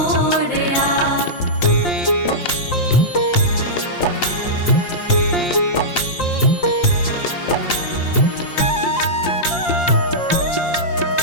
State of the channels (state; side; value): late; right; 5.7 ms